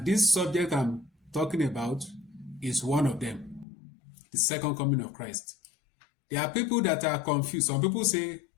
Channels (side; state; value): right; drops out; at 3.7 s